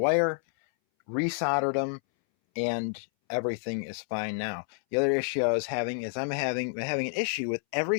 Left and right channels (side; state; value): right; silent; 59 dB below the other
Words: Resoldered them, and everything is fine now. The other issue I was having is I'm having an issue with